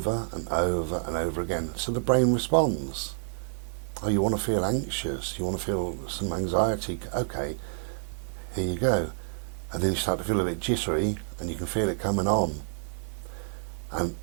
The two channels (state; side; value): silent; left; digital silence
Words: and over and over again. So the brain responds. Oh, you want to feel anxious? You want to feel some anxiety? Okay. Here you go. And then you start to feel a bit jittery, and you can feel it coming on. And